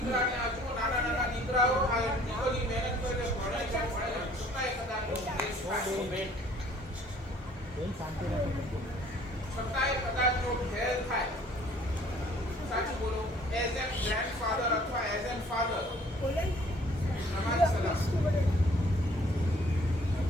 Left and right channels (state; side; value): normal; both; correlation 0.56